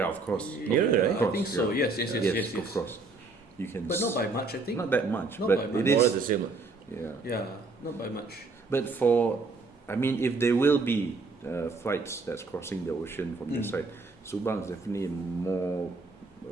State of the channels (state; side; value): quieter; left; 3.7 dB